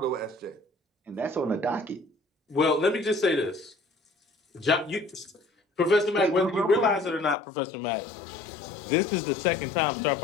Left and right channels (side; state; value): right; drops out; at 7.4 s